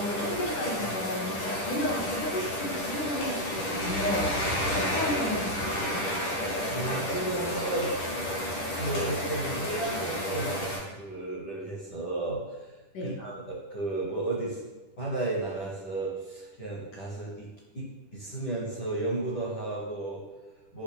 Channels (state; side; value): late; right; 10 ms